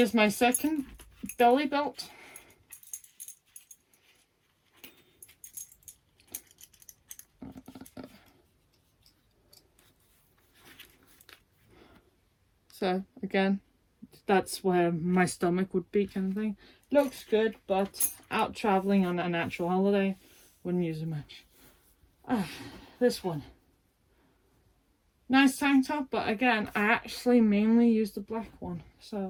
my second belly belt. So again, that's where my stomach would be, kind of thing. Looks good, but out traveling on a natural holiday, wouldn't use it much. This one. Nice tank top, but again, I actually mainly use the black one.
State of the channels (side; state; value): both; identical; correlation 1.00